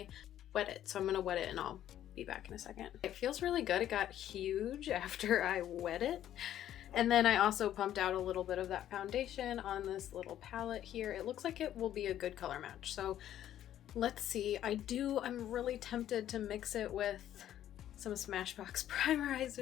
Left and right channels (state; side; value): quieter; right; 11.6 dB